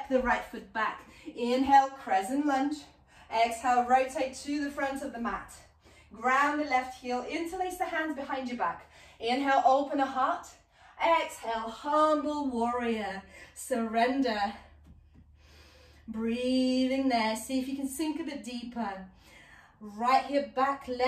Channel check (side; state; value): both; identical; correlation 1.00